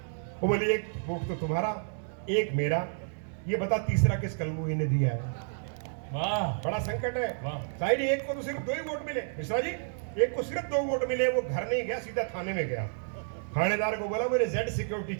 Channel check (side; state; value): left; silent; digital silence